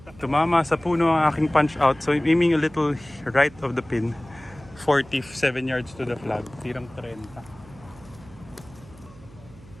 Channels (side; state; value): right; noise; hum, 21 dB below the sound